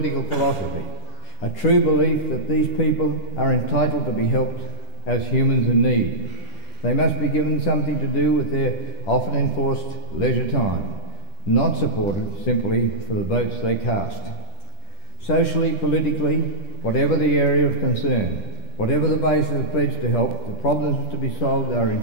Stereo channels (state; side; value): late; right; 10 ms